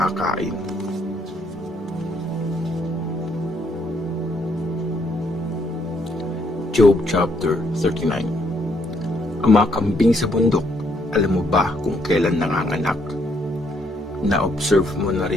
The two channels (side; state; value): both; normal; correlation 0.71